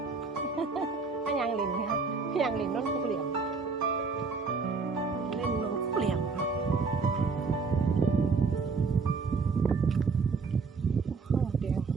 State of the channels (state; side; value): quieter; left; 4.7 dB